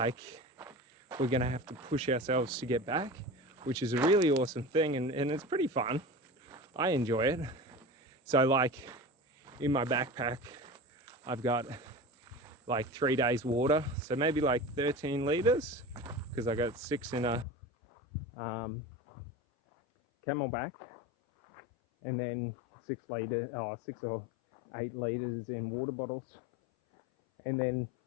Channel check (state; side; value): drops out; right; at 17.4 s